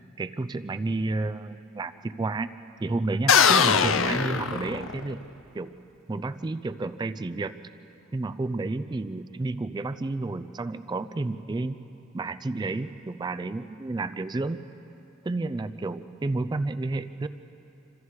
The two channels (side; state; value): both; normal; correlation 0.46